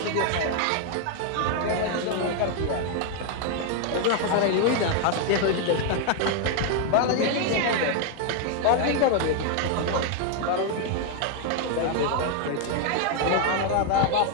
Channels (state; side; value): different; both; correlation 0.00